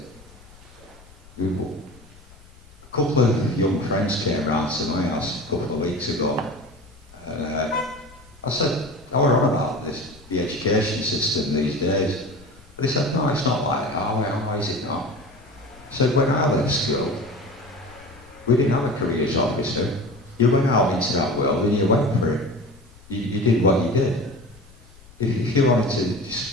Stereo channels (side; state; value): left; noise; rumble, 24 dB below the sound